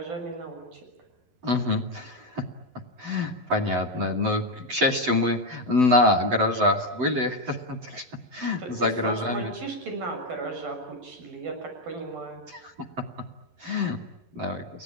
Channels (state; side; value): late; left; 11 ms